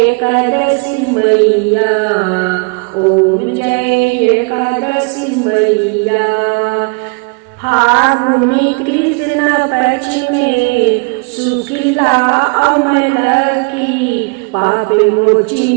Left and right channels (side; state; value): left; quieter; 33.3 dB